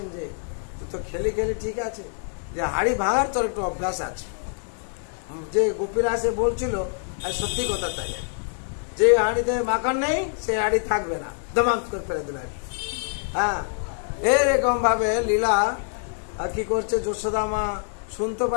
যে তুই তো খেলি ঠিক আছে, যে হাড়ি ভাঙার তোর একটু অভ্যাস আছে। যে গোপীরা সে বলছিল, আর সত্যি কথা তাই, যে হাড়িতে মাখন নেই সে হাড়ি থাকবে না, দমাম করে ফেলে দিল। হ্যাঁ, এরকম ভাবে লীলা কি করছে যশোদা মা শুনতে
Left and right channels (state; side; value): silent; right; 62 dB below the other